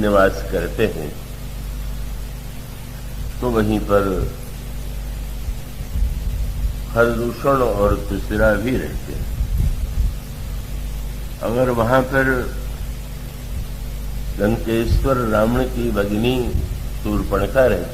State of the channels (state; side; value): identical; both; correlation 1.00